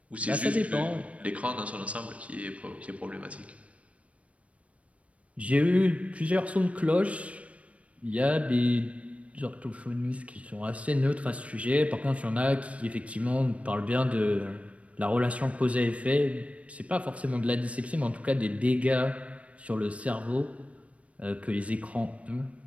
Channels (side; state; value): left; late; 0.064 ms